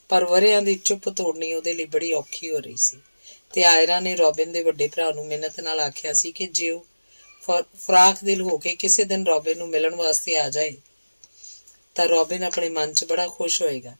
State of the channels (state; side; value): inverted; both; correlation -1.00